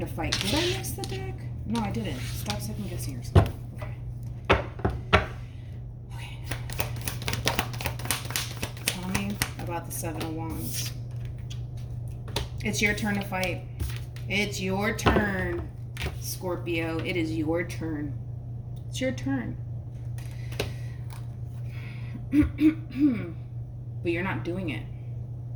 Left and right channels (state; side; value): identical; both; correlation 1.00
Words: to fight. Did I mix the deck? No, I didn't. Stop second guessing yourself. Okay. Tell me about the Seven of Wands. It's your turn to fight. It's your turn, Scorpio. It is your turn. It's your turn. But you're not doing it.